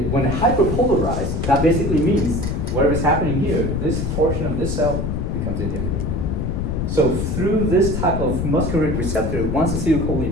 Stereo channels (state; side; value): noise; left; rumble, 1 dB below the sound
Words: when it hyperpolarizes, that basically means whatever's happening here, this portion of this cell becomes inhibited. So through this type of muscarinic receptor, once